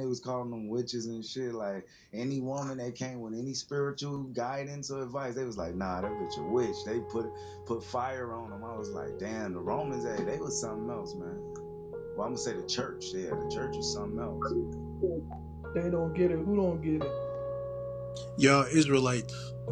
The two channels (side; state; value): both; identical; correlation 1.00